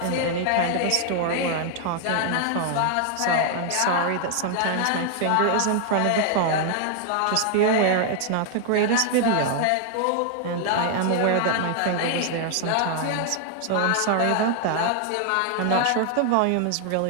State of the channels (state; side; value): different; both; correlation 0.00